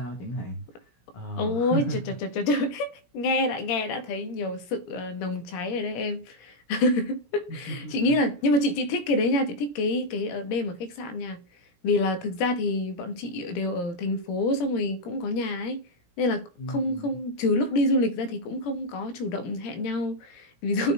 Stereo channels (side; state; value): right; late; 17 ms